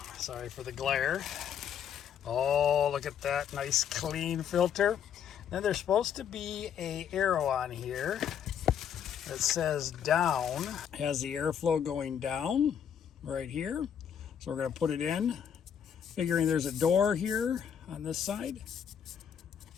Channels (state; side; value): quieter; right; 8.4 dB